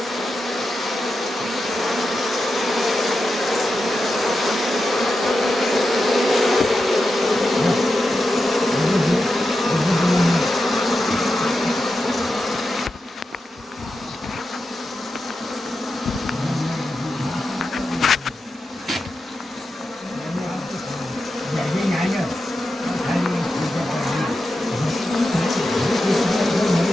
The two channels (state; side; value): normal; both; correlation 0.90